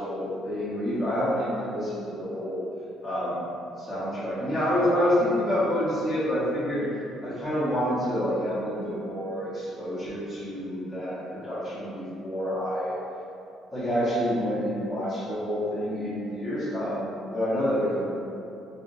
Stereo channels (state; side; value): normal; both; correlation 0.70